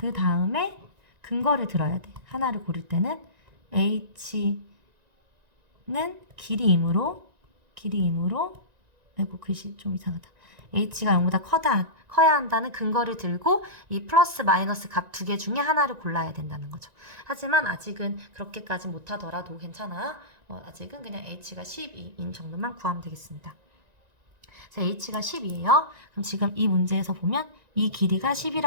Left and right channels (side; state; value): left; late; 1.9 ms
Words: 다음에 근거를 들어야 돼. 하나를 고를 때는 h는 길이이므로 아이고 글씨 좀 이상하다. h가 0보다 커야 한다는 근거를 들고 이 플러스 마이너스 값 두 개 중에 하나를 골라야 된다는 거죠. 하지만 아직은 그렇게까지 못하더라도 괜찮아. 아직은 그냥 h가 12인 정도만 구하면 되겠습니다. 자, h가 10이에요. 그럼 지금 이 문제에서 보면 이 길이가